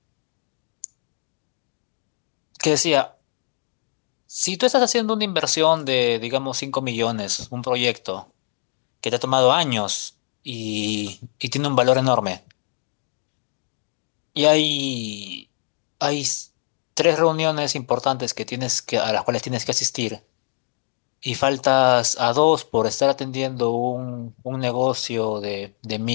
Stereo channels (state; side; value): silent; right; digital silence